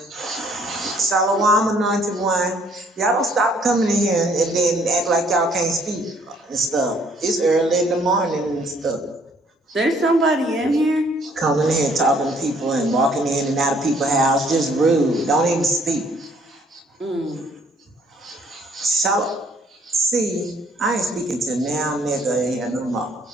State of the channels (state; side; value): normal; both; correlation 0.62